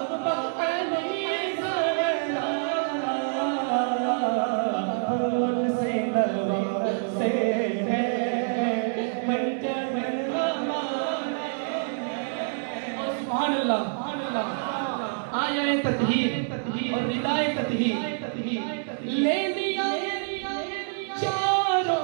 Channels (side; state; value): left; silent; 60 dB below the other